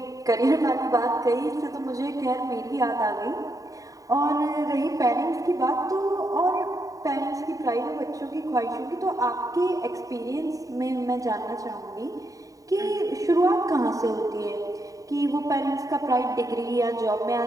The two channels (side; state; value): left; late; 0.16 ms